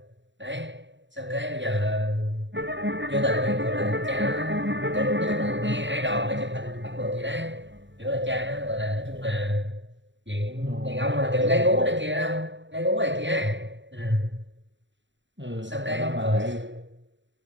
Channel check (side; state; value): left; late; 0.54 ms